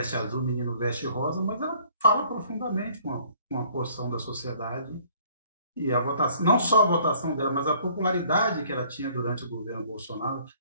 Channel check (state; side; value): inverted; both; correlation -0.58